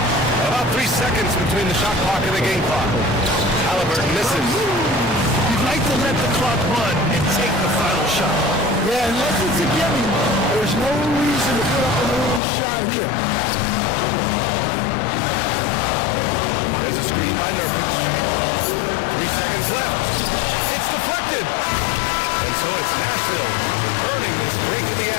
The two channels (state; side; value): drops out; right; at 12.4 s